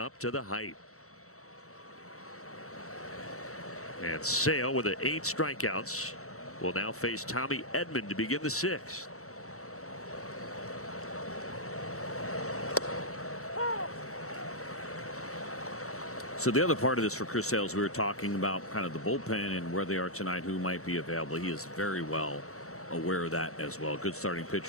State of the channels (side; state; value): right; late; 0.64 ms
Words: to the hype. And Sale with 8 strikeouts will now face Tommy Edman to begin the 6th. So the other part of this for Chris Sale, we were talking about kind of the bullpen and where they are tonight, who might be available. He is very well aware of that as well. Good starting